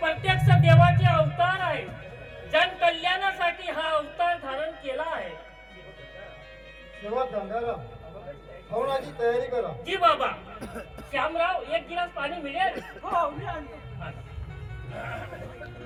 देवाचे अवतार आहे. जन कल्याणासाठी हा अवतार धारण केला आहे. तेव्हा गंगाराम हवनाची तयारी करा. जी बाबा. श्यामराव एक गिलास पाणी मिळेल. हो मी आणतो.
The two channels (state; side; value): identical; both; correlation 1.00